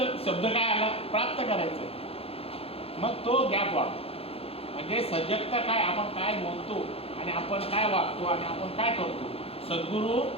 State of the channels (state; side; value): late; right; 0.28 ms